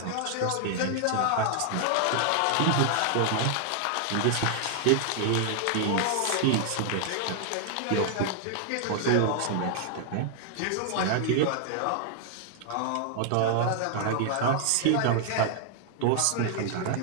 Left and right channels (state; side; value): different; both; correlation 0.00